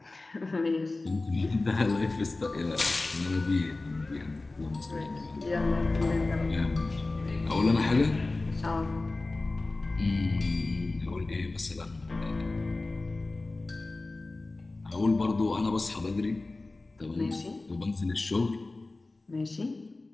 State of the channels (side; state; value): right; quieter; 3.2 dB